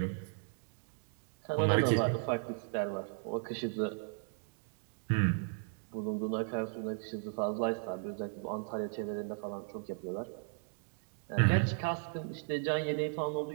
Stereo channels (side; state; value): left; silent; 54 dB below the other